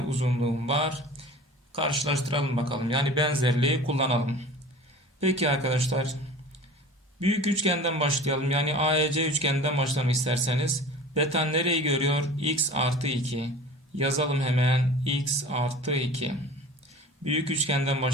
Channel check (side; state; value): both; normal; correlation 0.40